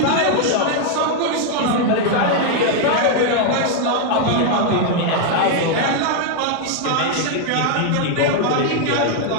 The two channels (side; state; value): both; different; correlation 0.00